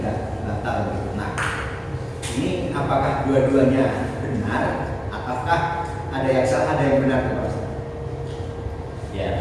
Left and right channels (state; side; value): identical; both; correlation 1.00